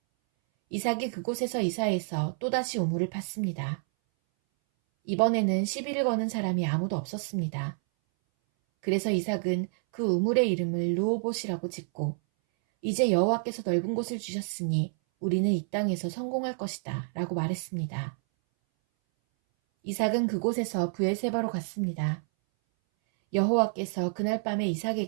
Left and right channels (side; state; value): left; silent; 59 dB below the other